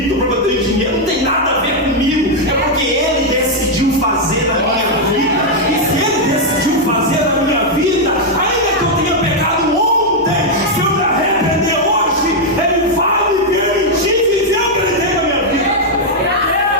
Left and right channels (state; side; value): normal; both; correlation -0.01